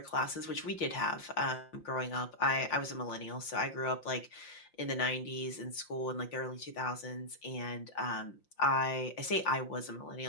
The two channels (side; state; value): right; late; 5.7 ms